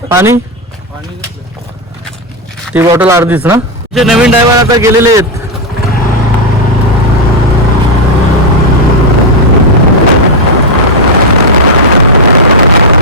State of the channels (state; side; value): normal; both; correlation 0.03